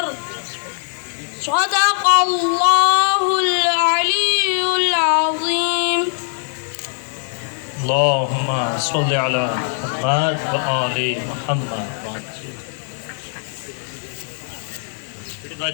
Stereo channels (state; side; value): silent; right; digital silence